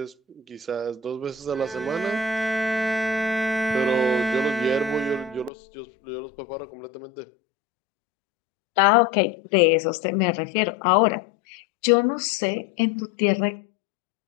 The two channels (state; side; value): drops out; right; at 5.5 s